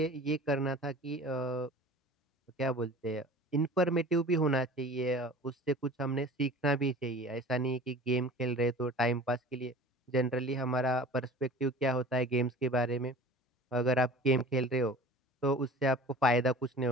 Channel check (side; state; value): both; normal; correlation 0.41